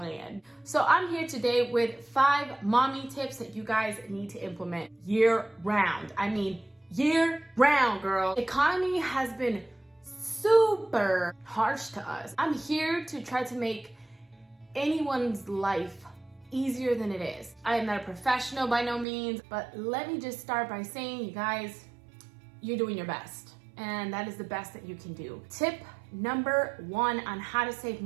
So I'm here today with 5 mommy tips that you guys need to implement year round. I mean year round, girl. The economy has been super harsh to us. I'm here to try to make anyone's life easier than it is. I am not a professional by no means, but let me just start by saying, you guys, you're doing your best. And that is the best that you can do. Tip number 1 on how to save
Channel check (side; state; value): left; drops out; at 19.1 s